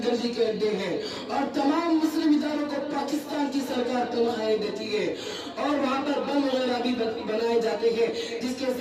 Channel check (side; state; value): both; identical; correlation 1.00